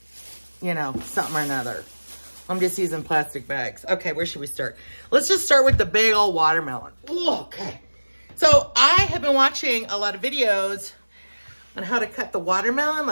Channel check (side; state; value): both; inverted; correlation -1.00